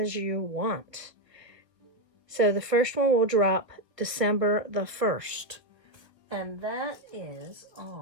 you want. So the first one will drop December the 1st. And that is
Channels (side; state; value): left; late; 1.2 ms